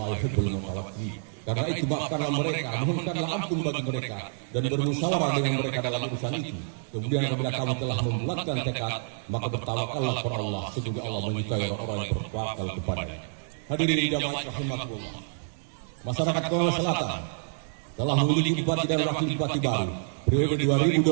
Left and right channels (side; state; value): left; silent; 59 dB below the other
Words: yuhibbul mutawakkilin. Karena itu maafkanlah mereka, mohonkanlah ampun bagi mereka dan bermusyawarah dengan mereka dalam urusan itu. Kemudian apabila kamu telah membulatkan tekad, maka bertawakallah kepada Allah. Sesungguhnya Allah menyukai orang-orang yang bertawakal kepadanya. Hadirin jamaah rahimakumullah. Masyarakat Konawe Selatan telah memiliki bupati dan wakil bupati baru periode